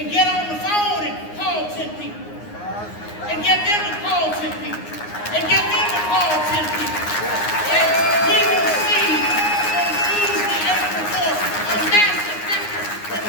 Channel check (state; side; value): late; right; 9.6 ms